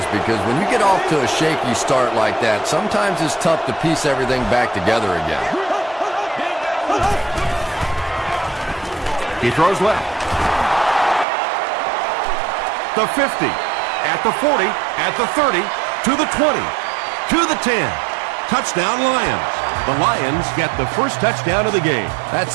because when you get off to a shaky start like that, sometimes it's tough to piece everything back together again. He throws left. The 50, at the 40, at the 30, to the 20, to the 10. Touchdown Lions. The Lions get the first touchdown of the game. That's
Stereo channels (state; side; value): drops out; left; at 11.2 s